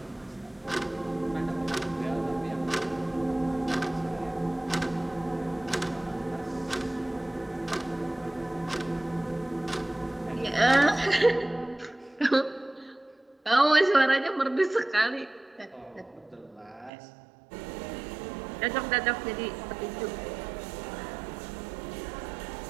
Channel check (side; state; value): left; drops out; at 16.9 s